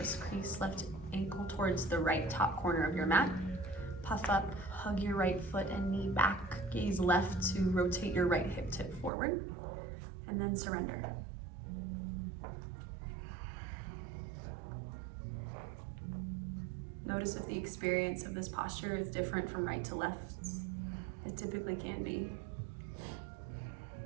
crease. Left ankle towards the right top corner of your mat. Puff up, hug your right foot and knee back. Gaze left to rotate your right hip tip forward. And then surrender. Notice if the experience of this posture is different from right to left. It typically can be.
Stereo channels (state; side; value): drops out; left; at 9.1 s